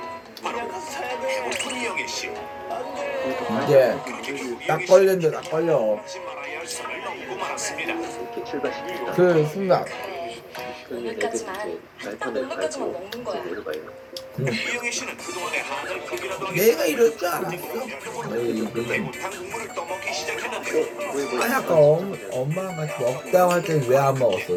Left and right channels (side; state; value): both; identical; correlation 1.00